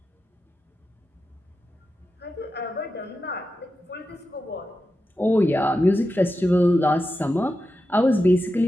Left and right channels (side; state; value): both; normal; correlation 0.90